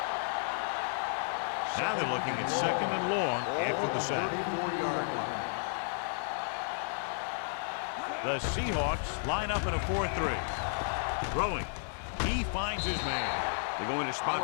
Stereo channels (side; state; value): right; silent; 56 dB below the other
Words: Now they're looking at second and long after the sack. 34-yard line. The Seahawks line up in a 4-3. Throwing. He finds his man. They're going to